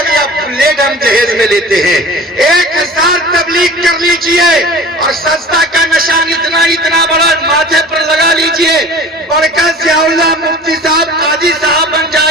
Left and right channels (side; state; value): both; normal; correlation 0.41